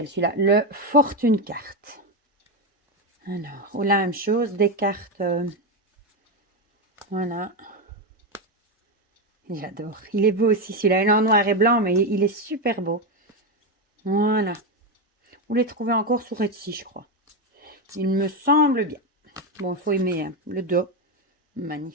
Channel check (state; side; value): normal; both; correlation 0.09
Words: celui-là? Le Fortune Carte. Alors, ou la même chose, des cartes... voilà. J'adore. Il est beau aussi celui-là. Il est en noir et blanc, mais il est super beau. Voilà. Vous les trouvez encore sur Etsy, je crois. Il me semble bien. Bon, il faut aimer hein, le dos.